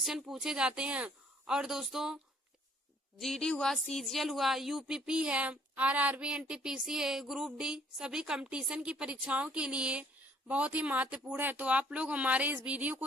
पूछे जाते हैं। और दोस्तों, जीडी हुआ, सीजीएल हुआ, यूपीपी है, आरआरबी, एनटीपीसी है, ग्रुप डी, सभी कंपटीशन की परीक्षाओं के लिए बहुत ही महत्वपूर्ण है। तो आप लोग हमारे इस वीडियो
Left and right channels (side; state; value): both; normal; correlation 0.61